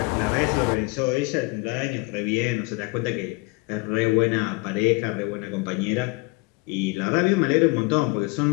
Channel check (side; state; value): right; quieter; 26.0 dB